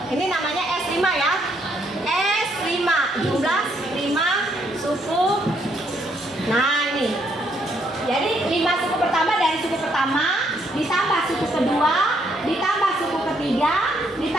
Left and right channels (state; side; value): normal; both; correlation 0.72